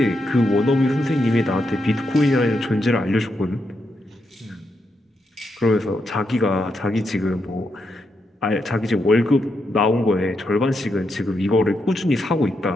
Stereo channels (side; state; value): both; normal; correlation 0.83